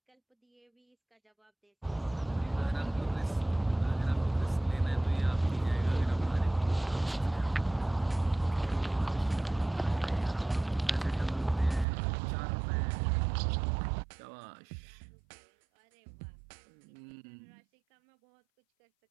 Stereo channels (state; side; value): drops out; left; at 11.9 s